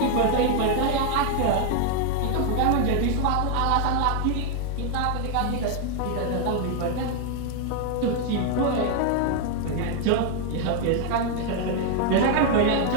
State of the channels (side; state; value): both; different; correlation 0.00